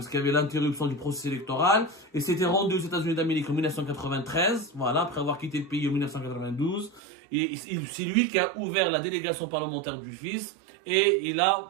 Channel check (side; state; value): left; drops out; at 7.0 s